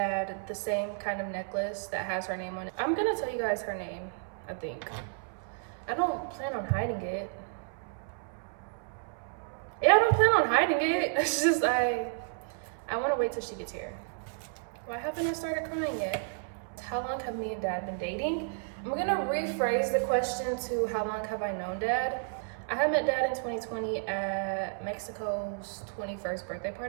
the same kind of necklace that has her name on it. I'm gonna tell you guys her name, I think. I don't plan on hiding it. Yeah, I don't plan on hiding it. It's just I want to wait till she gets here. Why haven't I started crying yet? How long have me and Dad been dating? I'm gonna rephrase the question to how long have I known Dad? I had met Dad in 2020 at Mexico's 21st birthday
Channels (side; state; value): left; silent; 57 dB below the other